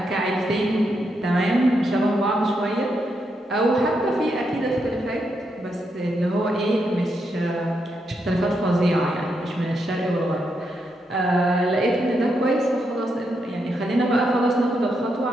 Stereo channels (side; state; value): both; normal; correlation 0.81